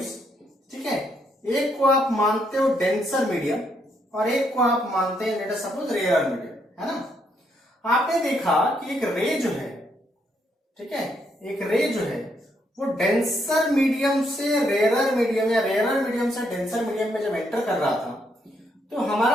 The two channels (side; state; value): both; normal; correlation 0.75